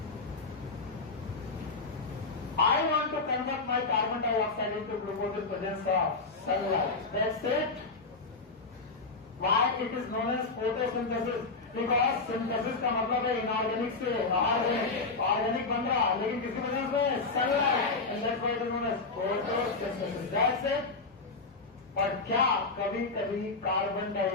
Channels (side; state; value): right; quieter; 3.9 dB